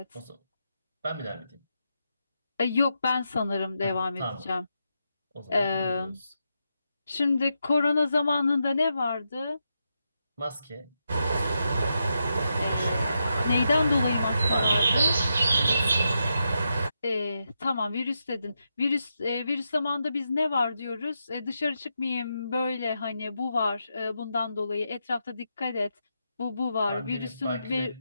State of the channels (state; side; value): inverted; both; correlation -0.84